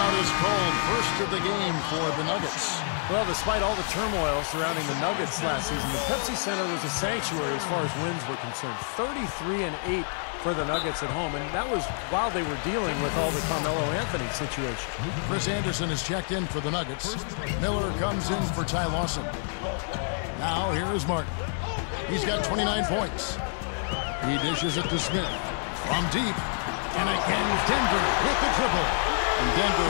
is called. First of the game for the Nuggets. Well, despite all the turmoil surrounding the Nuggets last season, the Pepsi Center was a sanctuary as far as wins were concerned. 33-8 for the Nuggets at home, and that was while they were dealing with all the Carmelo Anthony situation. Chris Anderson is checked in for the Nuggets. Miller comes in for Ty Lawson. Now here is Martin. He's got 29 points. He dishes it to Smith. From deep, and again Denver with the triple. And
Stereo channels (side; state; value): right; silent; 60 dB below the other